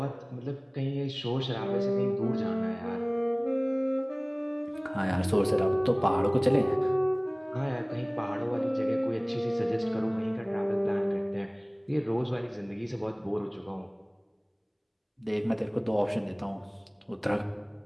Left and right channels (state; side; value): identical; both; correlation 1.00